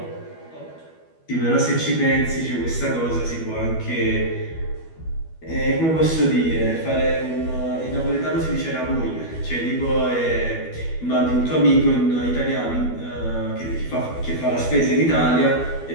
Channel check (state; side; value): late; right; 12 ms